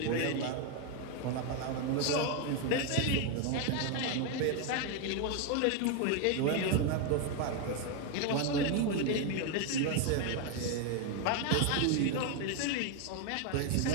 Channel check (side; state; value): both; different; correlation 0.01